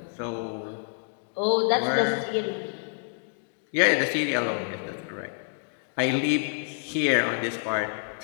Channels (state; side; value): silent; right; digital silence